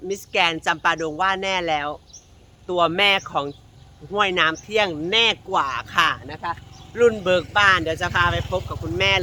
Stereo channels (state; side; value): identical; both; correlation 1.00